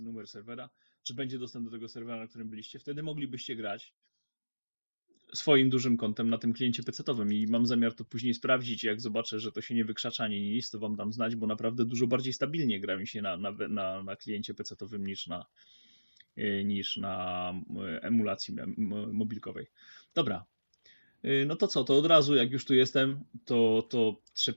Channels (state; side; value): inverted; both; correlation -1.00